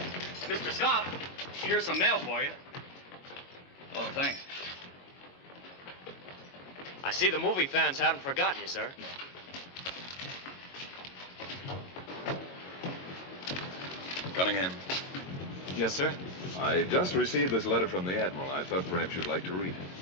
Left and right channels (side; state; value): right; late; 22 ms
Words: Mr. Scott, here's some mail for you. Oh, thanks. I see the movie fans haven't forgotten you, sir. Cunningham. Yes, sir? I just received this letter from the Admiral. I thought perhaps you'd like to read it.